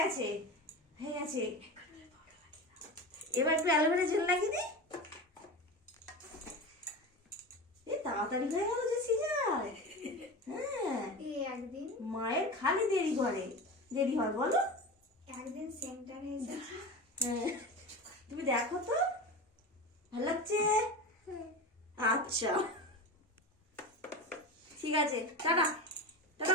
হয়ে গেছে। এবার একটু অ্যালোভেরা জেল লাগিয়ে দিই। তাড়াতাড়ি হয়ে গেল যে সিজার। হ্যাঁ, একদিন মায়ের খালি দেরি করে, দেরি হয় বলো। একদিন সেন্টারে এসেছি। হ্যাঁ, তুমি দেখো তো ভালো লাগছে। আচ্ছা ঠিক আছে, টাটা টাটা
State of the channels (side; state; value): both; normal; correlation 0.27